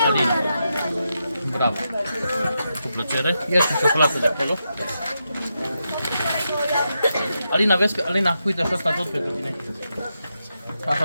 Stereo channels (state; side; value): inverted; both; correlation -0.85